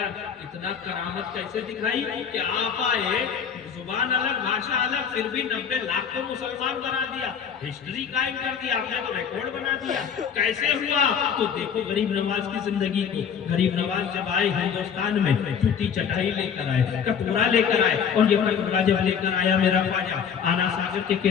इतना करामत कैसे दिखाई कि आप आए, जुबान अलग, भाषा अलग, फिर भी 90 लाख को मुसलमान बना दिया, हिस्ट्री कायम कर दिया आपने, तो रिकॉर्ड बना दिया। कैसे हुआ? तो देखो गरीब नवाज की जिंदगी को। गरीब नवाज जब आए हिंदुस्तान में, जूती चटाई लेकर आए, कटोरा लेकर आए, और ये कटोरा जब लेकर आया मेरा ख्वाजा, आना सागर के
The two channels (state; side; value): quieter; right; 7.4 dB